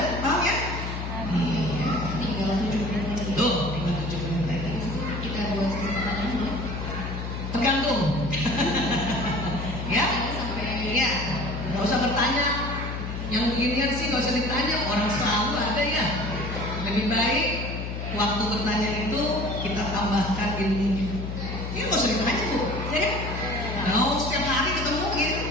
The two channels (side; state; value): left; noise; hum, 5 dB below the sound